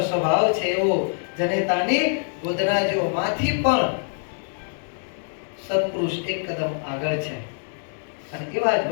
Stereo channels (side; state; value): right; silent; digital silence